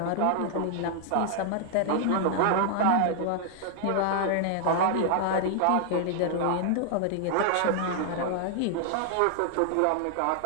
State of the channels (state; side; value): different; both; correlation 0.00